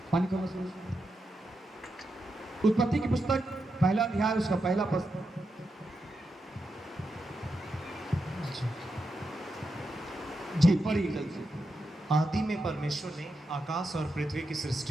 पानी का मसूर। उत्पत्ति की पुस्तक पहला अध्याय उसका पहला पद। जी पढ़िए जल्दी से। आदि में परमेश्वर ने आकाश और पृथ्वी की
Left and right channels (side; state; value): both; normal; correlation 0.86